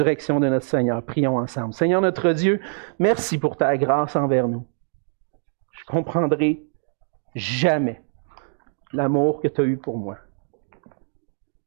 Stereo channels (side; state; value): left; silent; 60 dB below the other